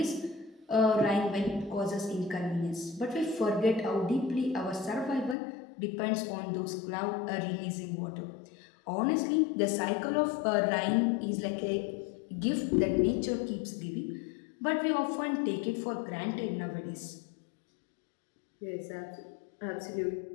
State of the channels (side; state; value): right; drops out; at 5.4 s